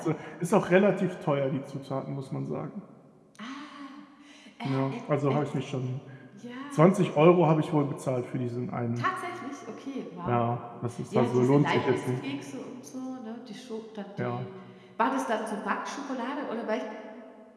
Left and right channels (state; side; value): identical; both; correlation 1.00